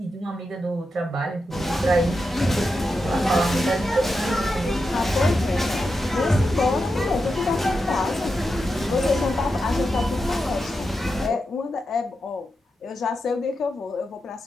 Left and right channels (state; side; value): normal; both; correlation 0.88